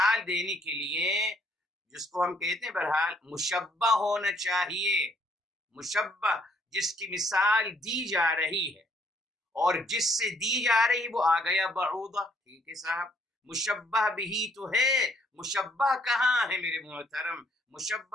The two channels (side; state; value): both; normal; correlation 0.67